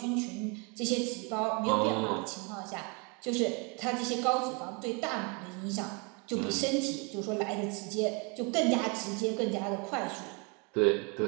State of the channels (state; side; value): quieter; left; 32.2 dB